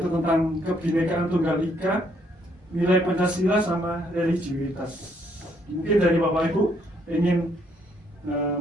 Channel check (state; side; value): normal; both; correlation 0.70